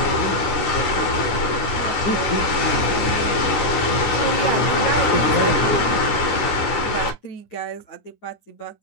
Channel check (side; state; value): right; late; 9.7 ms